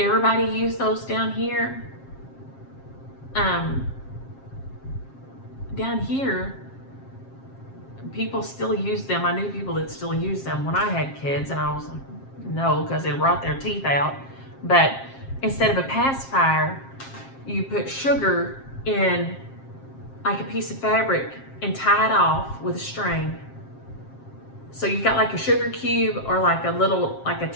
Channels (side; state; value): right; late; 7.5 ms